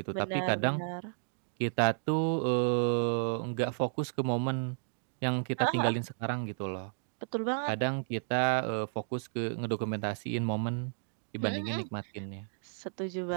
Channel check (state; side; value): silent; left; digital silence